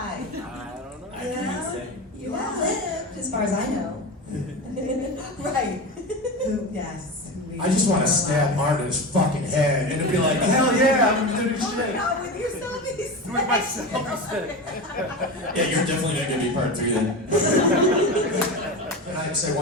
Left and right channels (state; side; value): normal; both; correlation 0.24